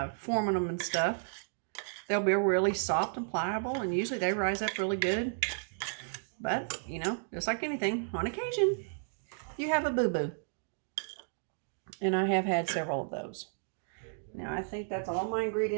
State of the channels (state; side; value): silent; left; digital silence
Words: forming them and stuff, they'll be really soft and pliable, and usually they rise up really good. But, you know, just like anything, on occasion, you have a boo-boo. And I have had several of those. Now, I think that's all my